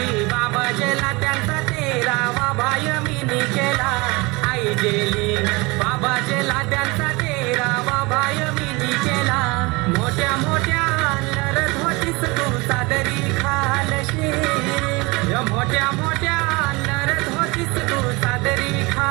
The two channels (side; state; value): left; quieter; 25.1 dB